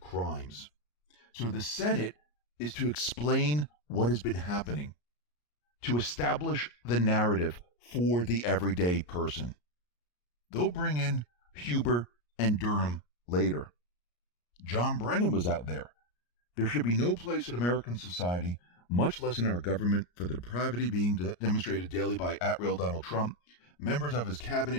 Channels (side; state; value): right; late; 34 ms